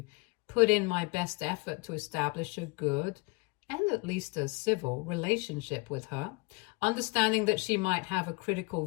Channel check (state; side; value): quieter; right; 27.3 dB